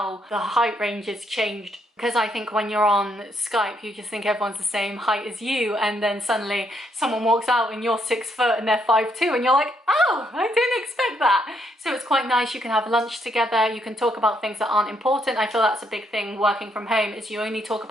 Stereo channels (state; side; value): normal; both; correlation 0.74